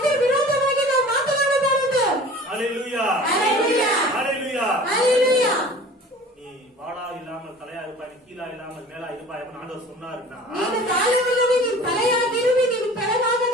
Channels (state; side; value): normal; both; correlation 0.43